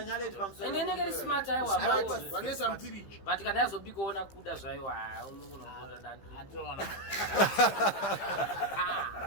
enenekeri smart aiwa vanesa mpiriji but kana yazobikaona kuda zvaiwa unokunokuda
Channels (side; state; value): right; late; 15 ms